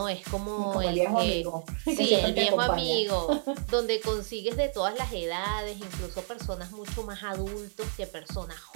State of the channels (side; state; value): left; silent; digital silence